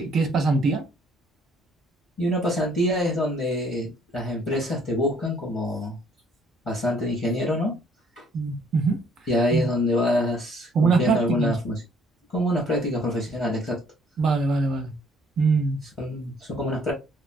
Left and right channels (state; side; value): normal; both; correlation 0.62